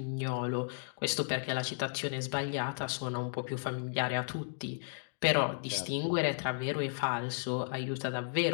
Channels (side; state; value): right; silent; digital silence